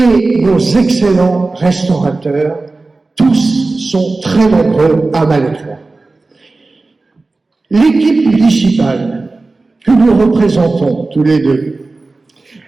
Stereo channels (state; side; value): quieter; left; 3.4 dB